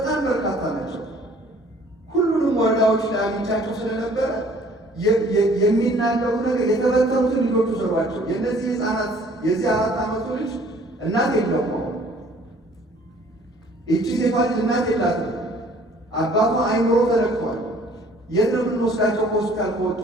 በርካታ ናቸው። ሁሉንም ወረዳዎች ላይ አግኝቻቸው ስለነበረ የሚናገሩ ነገር የተበተኑትን ልጆቹ ሰሯቸው። የእነዚህ ህፃናት የዚህ 4 ዓመቱ ልጅ እናት የለውም። ይቺ ሴቷ ልጅ እናት የላትም። አባቷ አይምሮ ተነክቷል። የት ነው የምንወስዳቸው? ከሆስፒታል ከወጡ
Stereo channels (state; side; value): normal; both; correlation 0.55